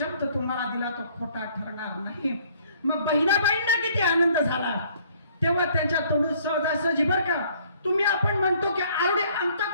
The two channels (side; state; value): both; inverted; correlation -0.60